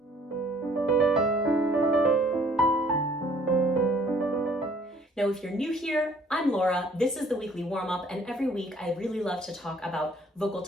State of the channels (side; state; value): both; normal; correlation 0.58